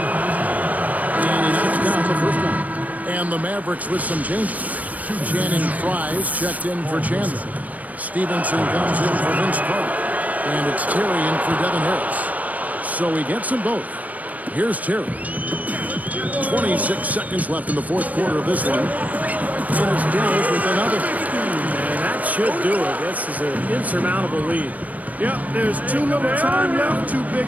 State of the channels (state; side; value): late; left; 0.072 ms